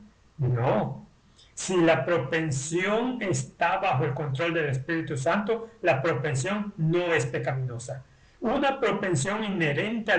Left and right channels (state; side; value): identical; both; correlation 1.00